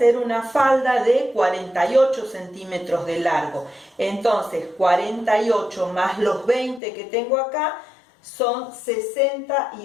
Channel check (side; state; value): right; drops out; at 6.8 s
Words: una falda de 48 centímetros de largo. Entonces 48 más los 20 que tengo acá son